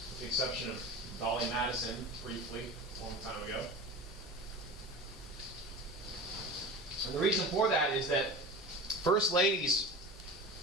with the exception of Dolly Madison, briefly, a long time ago. And the reason for that is that first ladies,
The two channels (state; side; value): normal; both; correlation 0.32